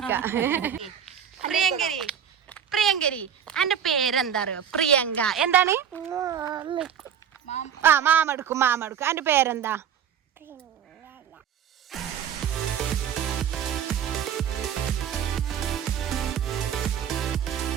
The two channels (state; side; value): quieter; left; 8.6 dB